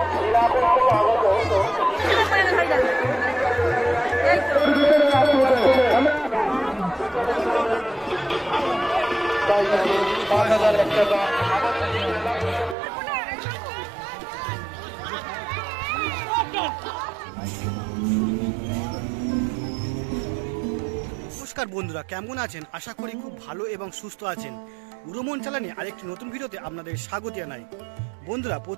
নমস্কার বন্ধুরা, কেমন আছেন? আশা করি খুব ভালো এবং সুস্থ আছেন। উড়োমন চালানে আরেকটি নতুন ভিডিওতে আপনাদের স্বাগত জানাই। বন্ধুরা,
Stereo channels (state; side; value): drops out; left; at 12.8 s